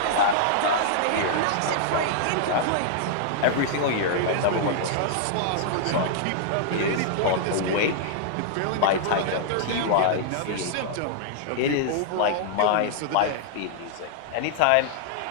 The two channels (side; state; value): both; different; correlation -0.01